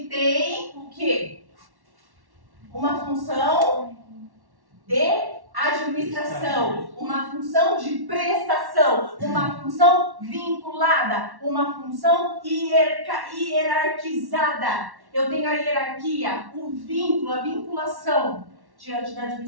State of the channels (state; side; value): late; left; 1.1 ms